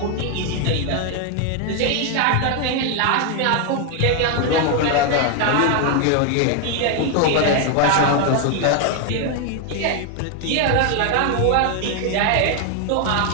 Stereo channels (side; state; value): both; different; correlation 0.01